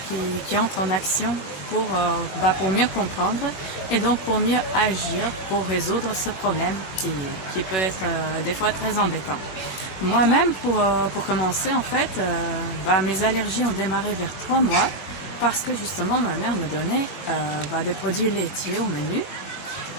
qui entrent en action pour mieux comprendre et donc pour mieux agir pour résoudre ce problème qui peut être des fois très embêtant. Moi-même pour commencer en fait, mes allergies ont démarré vers 3 mois. Parce que justement ma mère me donnait des produits laitiers au menu.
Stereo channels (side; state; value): right; late; 20 ms